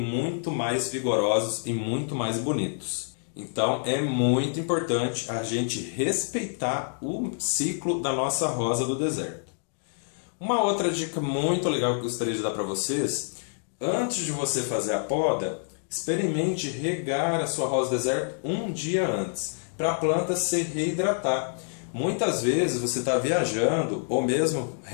mais vigorosos e muito mais bonitos. Então, é muito importante a gente respeitar o ciclo da nossa rosa do deserto. Uma outra dica muito legal que eu gostaria de dar para vocês: antes de você fazer a poda, experimente regar a sua rosa deserto um dia antes, para a planta se reidratar. Muitas vezes você está viajando, ou mesmo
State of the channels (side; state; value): right; silent; digital silence